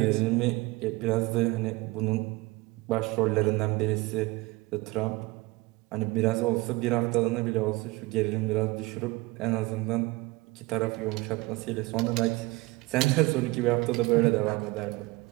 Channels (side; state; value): left; quieter; 22.2 dB